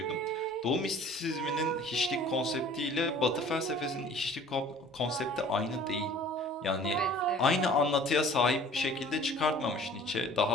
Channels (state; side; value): normal; both; correlation 0.48